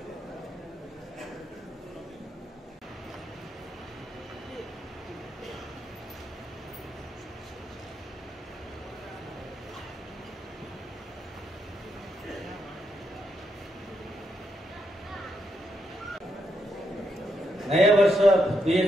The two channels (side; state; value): both; normal; correlation 0.80